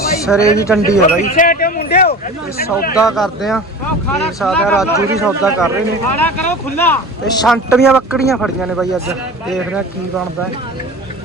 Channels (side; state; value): both; normal; correlation 0.36